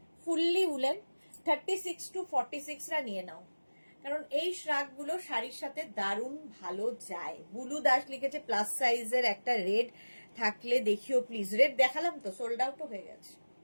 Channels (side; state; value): both; inverted; correlation -1.00